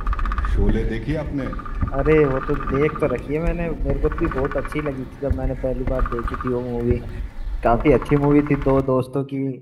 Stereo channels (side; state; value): both; identical; correlation 1.00